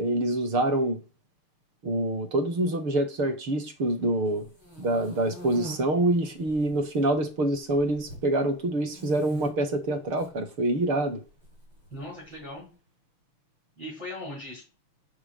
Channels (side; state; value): left; late; 6.6 ms